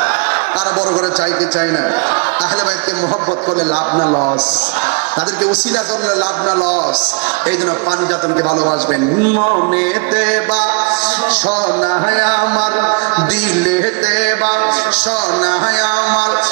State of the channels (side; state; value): left; quieter; 33.9 dB